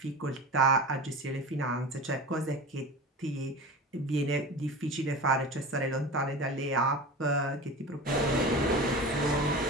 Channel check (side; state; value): both; normal; correlation 0.31